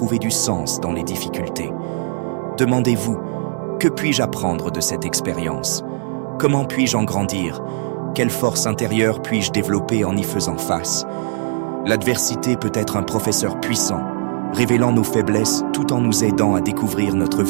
du sens dans les difficultés. Demandez-vous, que puis-je apprendre de cette expérience? Comment puis-je en grandir? Quelle force intérieure puis-je développer en y faisant face? L'adversité peut être un professeur puissant, révélant nos faiblesses tout en nous aidant à découvrir notre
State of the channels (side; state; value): left; silent; 66 dB below the other